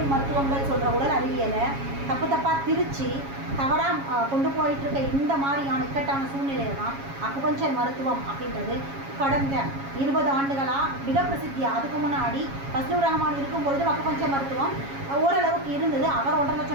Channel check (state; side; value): late; left; 7.3 ms